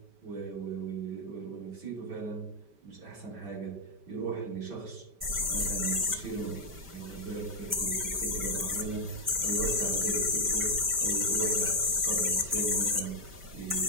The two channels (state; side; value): late; left; 5.1 ms